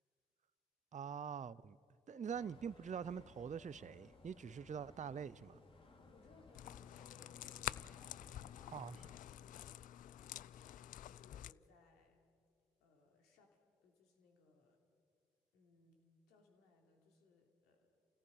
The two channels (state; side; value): normal; both; correlation 0.38